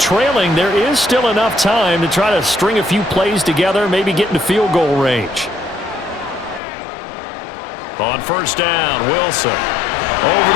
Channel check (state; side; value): drops out; right; at 6.6 s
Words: there is still enough time to try to string a few plays together, maybe get into field goal range. On first down, Wilson. Over